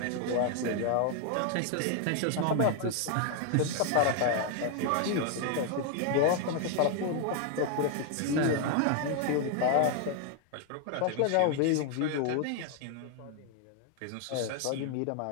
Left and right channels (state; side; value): different; both; correlation 0.00